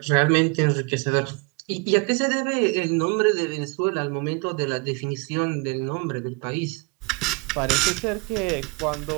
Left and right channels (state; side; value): quieter; left; 28.7 dB